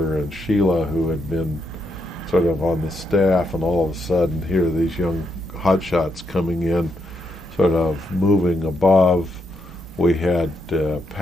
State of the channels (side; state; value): both; normal; correlation 0.80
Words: and Sheila who had been sort of on the staff, and all of a sudden here are these young hotshots coming in, sort of moving above. We had